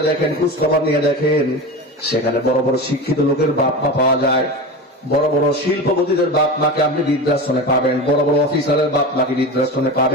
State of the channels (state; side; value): normal; both; correlation 0.27